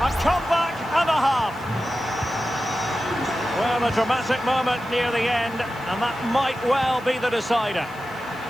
comeback and a half. Well, a dramatic moment near the end, and that might well be the decider.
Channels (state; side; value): noise; right; hiss, 25 dB below the sound